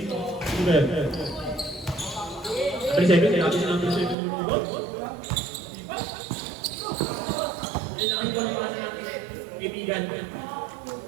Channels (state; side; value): drops out; left; at 4.2 s